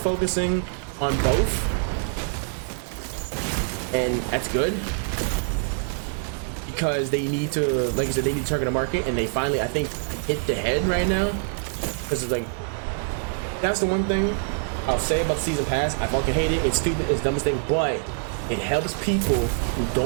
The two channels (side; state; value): left; silent; 62 dB below the other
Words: on both, and that's good because they need to, like I said, they need to target a market, and they finally, I think, hit the head right now, because it's like, that's the one thing I'll say about the season pass. I fucking hate it. It's stupid. It's the dumbest thing, but it helps people who